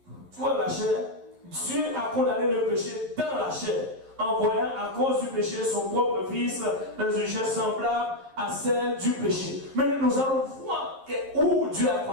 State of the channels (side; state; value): left; late; 11 ms